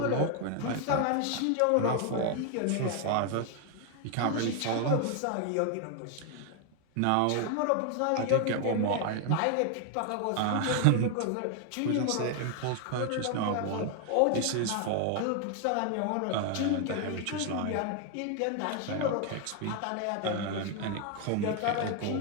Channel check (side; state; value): both; different; correlation 0.01